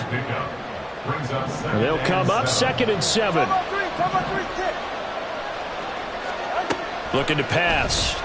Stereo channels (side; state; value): both; identical; correlation 1.00